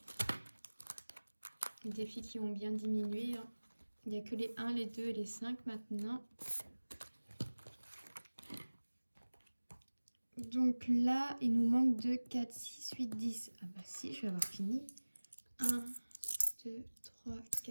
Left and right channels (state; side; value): inverted; both; correlation -1.00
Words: les défis qui ont bien diminué. Hein. Il n'y a que les 1, les 2 et les 5 maintenant. Donc là, il nous manque 2, 4, 6, 8, 10. Ah bah si, je vais avoir fini. 1, 2, 3,